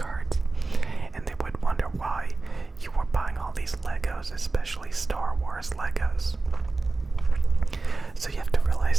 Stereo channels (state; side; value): quieter; left; 3.5 dB